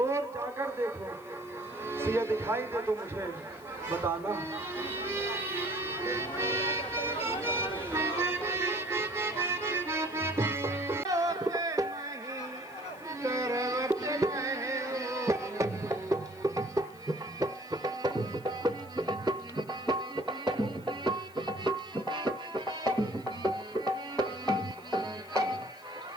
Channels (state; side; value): noise; left; hiss, 26 dB below the sound